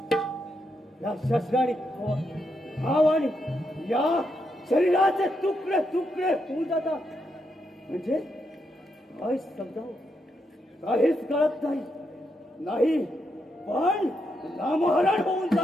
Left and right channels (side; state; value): both; normal; correlation 0.81